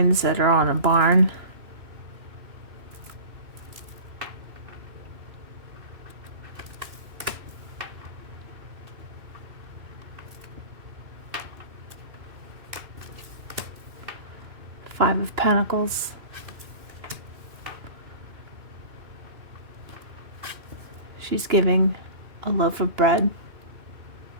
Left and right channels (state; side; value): late; left; 2.9 ms